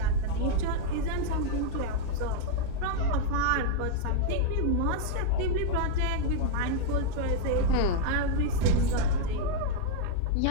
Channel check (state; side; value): different; both; correlation -0.01